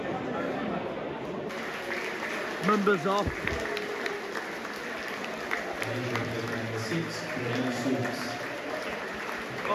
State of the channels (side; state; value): both; identical; correlation 1.00